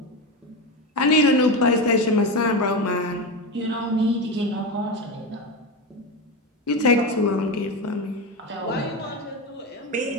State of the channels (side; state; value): both; normal; correlation 0.18